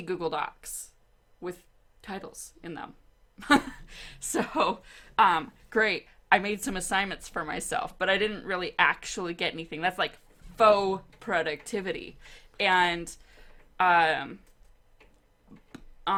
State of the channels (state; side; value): identical; both; correlation 1.00